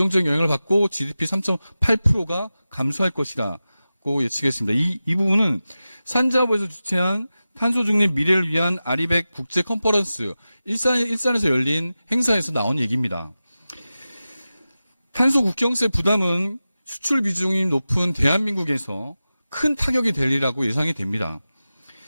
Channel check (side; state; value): both; inverted; correlation -0.94